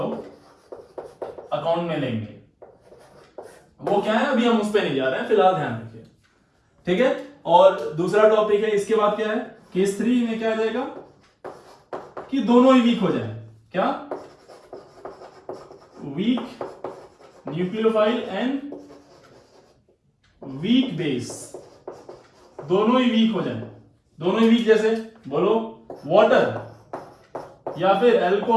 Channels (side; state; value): both; identical; correlation 1.00